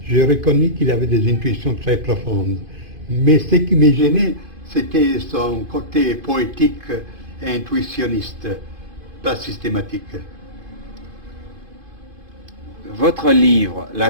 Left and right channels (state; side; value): late; left; 2.5 ms